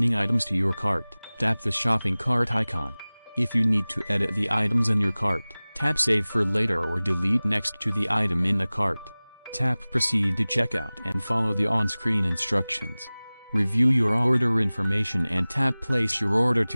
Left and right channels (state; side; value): inverted; both; correlation -0.99